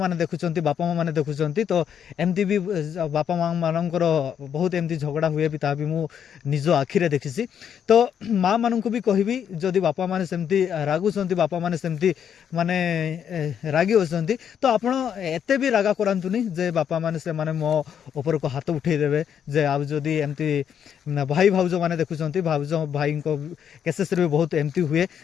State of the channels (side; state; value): right; quieter; 8.5 dB